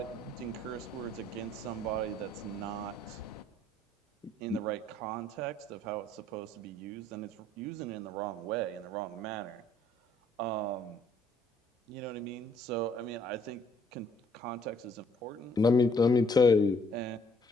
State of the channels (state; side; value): normal; both; correlation 0.64